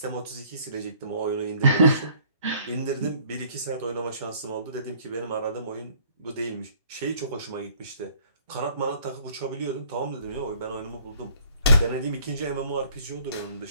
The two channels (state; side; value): inverted; both; correlation -0.57